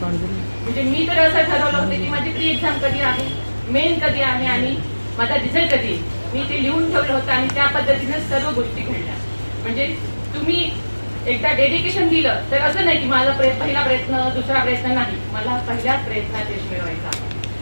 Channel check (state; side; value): inverted; both; correlation -1.00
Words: म्हणजे मी तर असं ठरवलं होतं की माझी प्री एक्झाम कधी आहे, मेन कधी आहे आणि माझा रिझल्ट कधी आहे. मी ते लिहून ठेवलं होतं आणि त्या पद्धतीने सर्व गोष्टी घडल्या. म्हणजे तुम्ही एकदा डेडिकेशन दिलं तर असं नाही की माझा पहिला प्रयत्न, दुसरा प्रयत्न नाही. मला पहिल्याच प्रयत्नात यश मिळवायचा